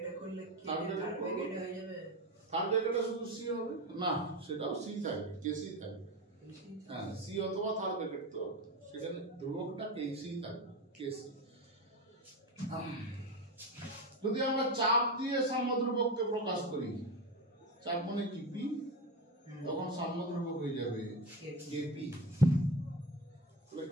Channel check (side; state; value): both; normal; correlation 0.20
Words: করলে কি থার্ড ব্র্যাকেটে হয়ে যাবে? থার্ড ব্র্যাকেটে শুধু সি হবে না, সেটাও সি থাকবে, কেসি থাকবে। হ্যাঁ, সি অথবা থার্ড ব্র্যাকেট, তো সেখানে ধ্রুবকটা কেসি থাকবে, কেসি। যদি আমরা চাপ দিয়ে সাম্যদ্রব্যককে প্রকাশ করি, চাপ মানে কি পি, তখন সাম্যদ্রব্যক হয়ে যাবে কেপি। তাহলে